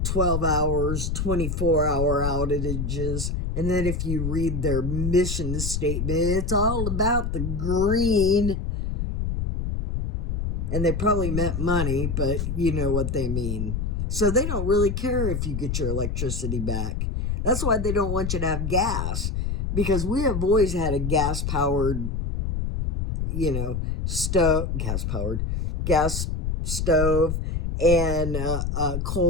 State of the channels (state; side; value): noise; left; rumble, 1 dB below the sound